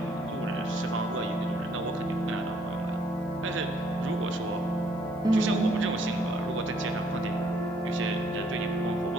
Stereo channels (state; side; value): normal; both; correlation 0.66